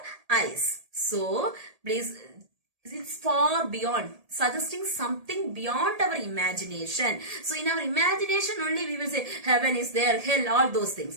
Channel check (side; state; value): left; late; 1.8 ms